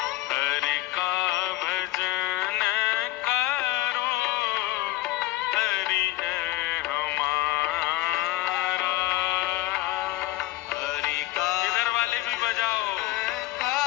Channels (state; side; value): quieter; right; 17.2 dB